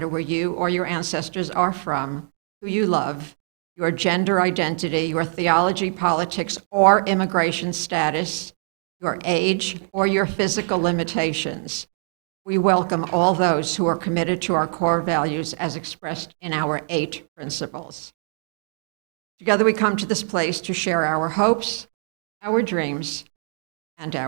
where you or your ancestors are from, who you love, your gender identity, your theology, politics, or immigration status, your age, or your physical limitations. We welcome all those who are committed to our core values as expressed in our 8 principles. Together we come to this place to share our hopes, our dreams, and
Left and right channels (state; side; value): silent; left; digital silence